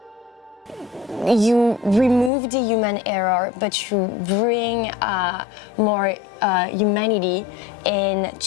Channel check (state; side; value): drops out; right; at 2.3 s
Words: You remove the human error, but you bring more humanity